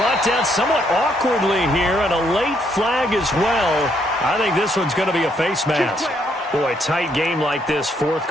down somewhat awkwardly here, and a late flag as well. I think this one's going to be a face mask. Boy, tight game like this, 4th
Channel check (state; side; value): normal; both; correlation 0.72